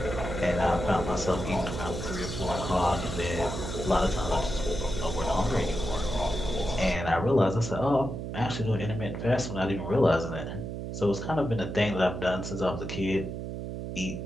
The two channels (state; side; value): noise; right; hum, 6 dB below the sound